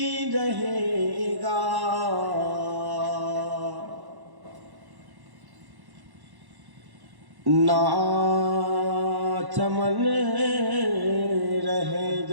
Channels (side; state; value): left; late; 1.1 ms